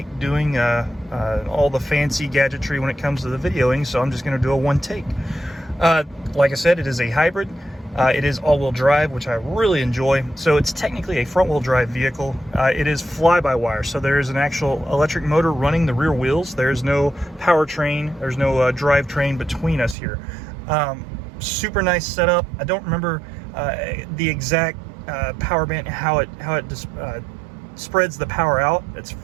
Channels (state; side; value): drops out; left; at 20.0 s